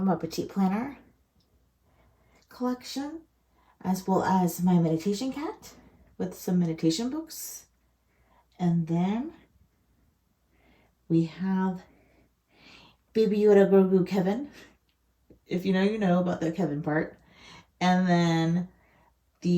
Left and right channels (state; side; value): identical; both; correlation 1.00